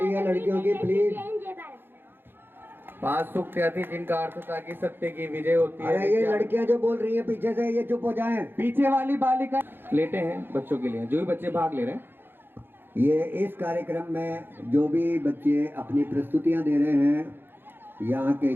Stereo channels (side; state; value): left; late; 0.10 ms